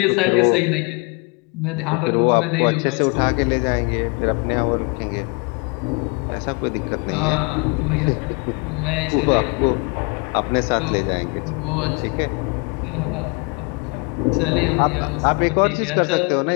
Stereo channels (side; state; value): right; quieter; 31.3 dB